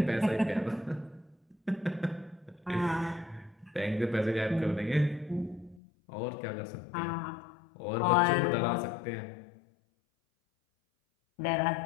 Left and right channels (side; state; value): right; drops out; at 5.8 s